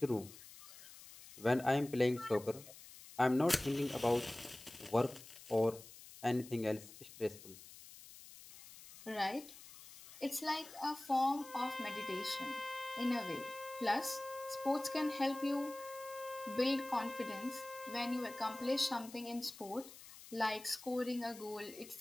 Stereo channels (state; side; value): noise; left; hiss, 17 dB below the sound